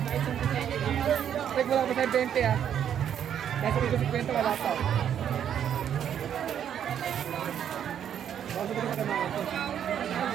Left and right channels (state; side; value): quieter; left; 9.3 dB